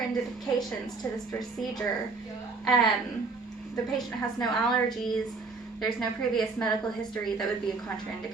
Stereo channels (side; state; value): left; quieter; 4.2 dB